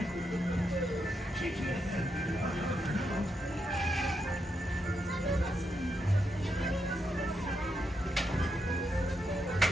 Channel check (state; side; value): normal; both; correlation 0.82